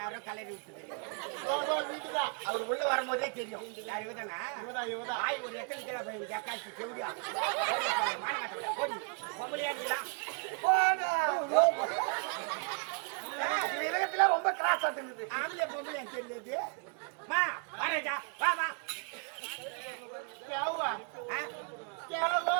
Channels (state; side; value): quieter; left; 38.0 dB